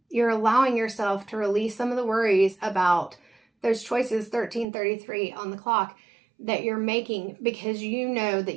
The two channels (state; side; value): drops out; left; at 4.7 s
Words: You're allowing yourself to release some of the worries about those choices, 1333 on the clock, that you're making, because you know that